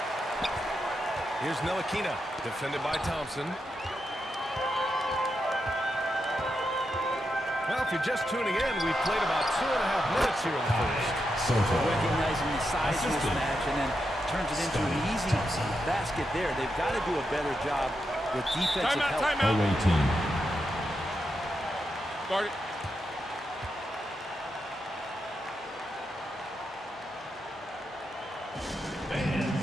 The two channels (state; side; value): normal; both; correlation 0.85